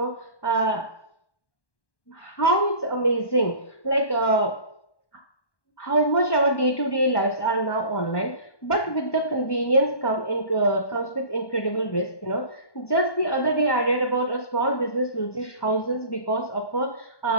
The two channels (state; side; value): late; right; 1.1 ms